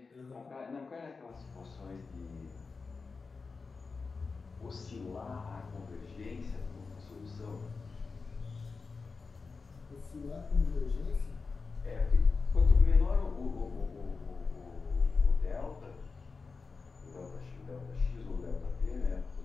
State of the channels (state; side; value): quieter; right; 4.5 dB